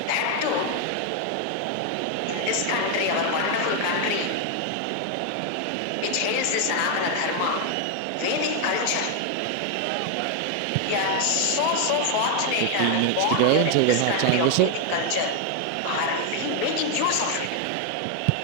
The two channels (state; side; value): different; both; correlation 0.01